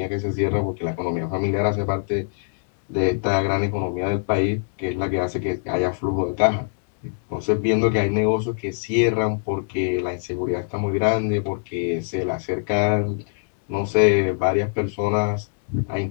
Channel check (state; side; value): silent; right; digital silence